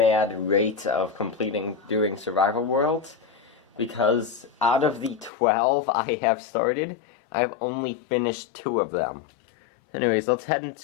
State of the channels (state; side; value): drops out; right; at 5.3 s